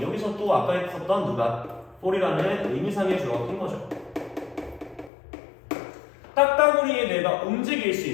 여기서 또 아까 했었던 누가? for이라는 의미상의 주어가 낀 거죠. 딱따구리의 뇌가 움직일 수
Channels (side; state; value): right; drops out; at 5.1 s